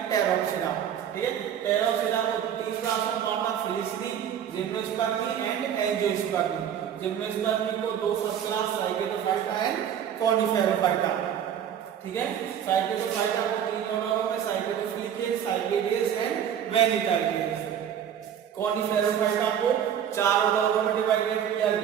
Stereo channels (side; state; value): left; quieter; 9.2 dB